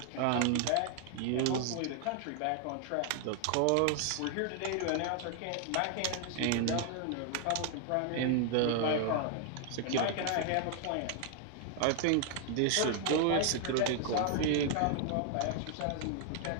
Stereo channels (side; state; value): both; different; correlation 0.00